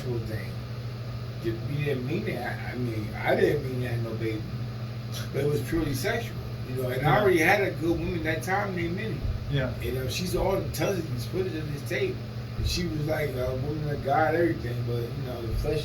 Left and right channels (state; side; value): identical; both; correlation 1.00